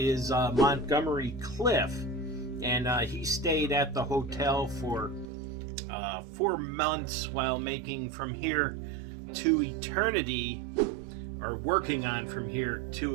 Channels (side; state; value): left; drops out; at 5.3 s